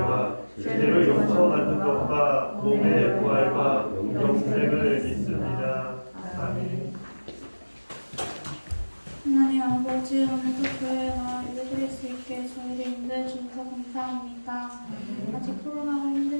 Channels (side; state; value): both; inverted; correlation -1.00